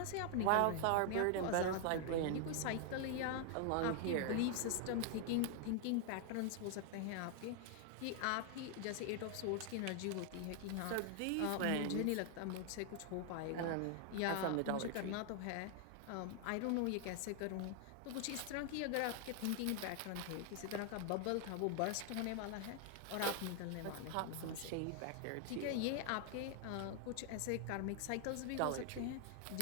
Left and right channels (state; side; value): different; both; correlation 0.00